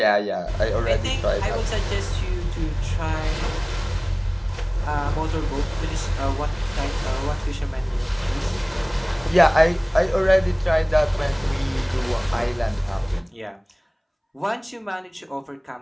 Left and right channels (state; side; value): identical; both; correlation 1.00